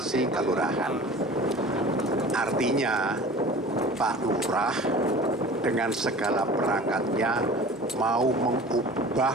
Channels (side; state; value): both; normal; correlation 0.41